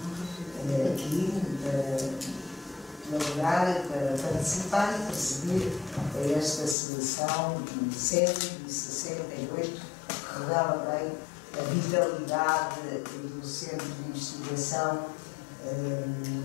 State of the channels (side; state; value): right; drops out; at 6.8 s